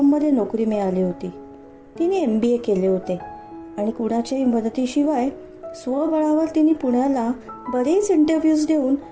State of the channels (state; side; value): identical; both; correlation 1.00